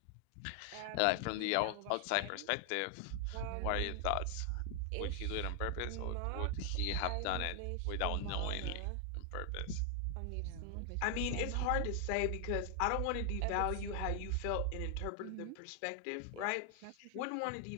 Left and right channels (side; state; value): both; different; correlation 0.00